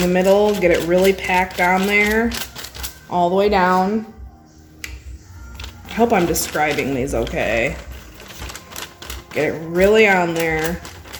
the middle, get it really packed on there, all the way down. I hope I'm describing these okay. Get it really on there,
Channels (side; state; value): both; identical; correlation 1.00